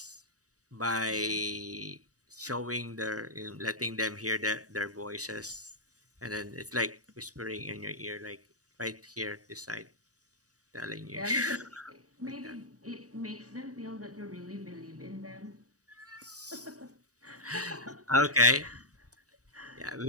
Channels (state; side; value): late; left; 0.66 ms